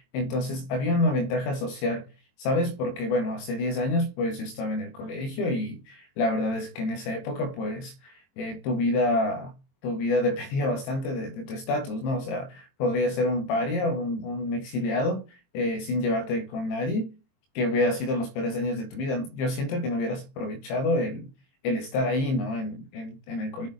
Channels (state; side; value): late; right; 22 ms